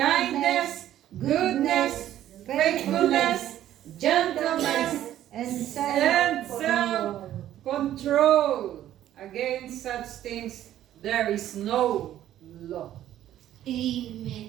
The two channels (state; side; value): quieter; left; 12.3 dB